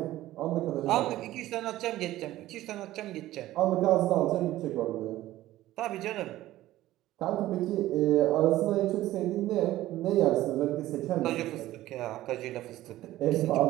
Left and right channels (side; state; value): left; quieter; 15.4 dB